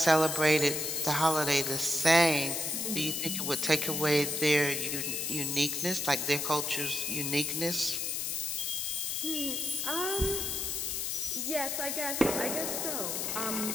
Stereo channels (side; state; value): left; noise; hiss, 1 dB below the sound